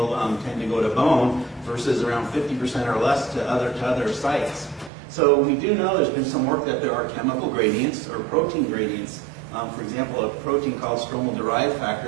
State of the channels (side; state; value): left; drops out; at 4.9 s